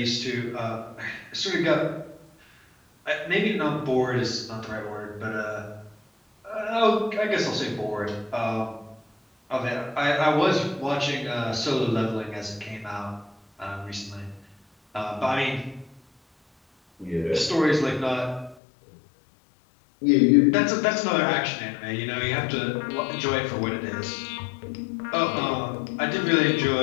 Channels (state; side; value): drops out; right; at 18.6 s